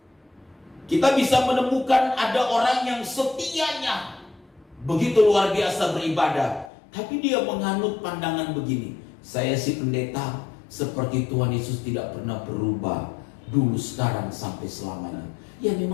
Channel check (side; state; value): right; drops out; at 6.7 s